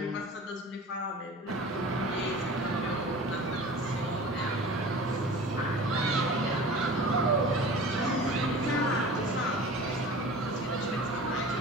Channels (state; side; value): normal; both; correlation 0.39